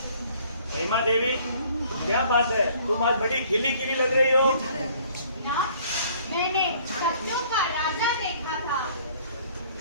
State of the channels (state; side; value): inverted; both; correlation -0.57